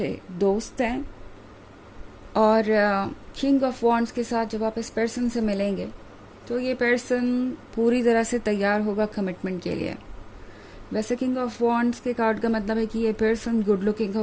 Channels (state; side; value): identical; both; correlation 1.00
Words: दोस्त हैं। और किंग ऑफ वॉन्ड्स के साथ जब आप इस पर्सन से मिलेंगे तो ये पर्सन पूरी तरह से तैयार होगा कमिटमेंट के लिए। वैसे किंग ऑफ वॉन्ड्स के कार्ड का मतलब है कि ये पर्सन गुड लुकिंग